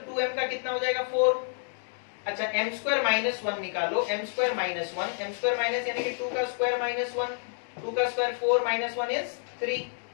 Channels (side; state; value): right; silent; digital silence